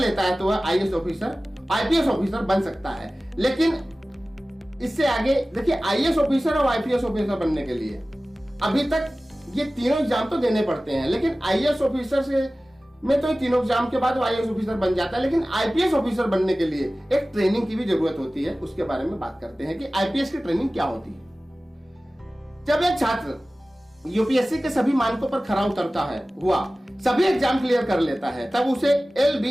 है तो वह आईपीएस ऑफिसर बन सकता है। लेकिन इससे आगे देखिए, आईएएस ऑफिसर और आईपीएस ऑफिसर बनने के लिए अभी तक ये तीनों एग्जाम तो देने पड़ते हैं, लेकिन आईएएस ऑफिसर से में तो ये तीनों एग्जाम के बाद वो आईएएस ऑफिसर बन जाता है, लेकिन आईपीएस ऑफिसर बनने के लिए एक ट्रेनिंग की भी जरूरत होती है। उसके बारे में बात करते हैं कि आईपीएस की ट्रेनिंग क्या होती है। जब एक छात्र यूपीएससी के सभी मानकों पर खरा उतरता है सभी एग्जाम क्लियर कर लेता है, तब उसे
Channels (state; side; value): normal; both; correlation 0.97